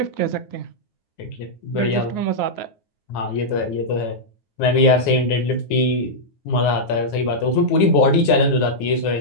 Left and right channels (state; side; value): late; right; 9.5 ms